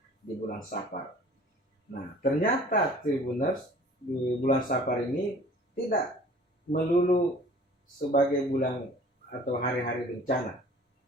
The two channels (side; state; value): both; normal; correlation 0.49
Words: di bulan Safar. Nah, ternyata Tribuners, di bulan Safar ini tidak melulu sebagai bulan atau hari-hari bencana.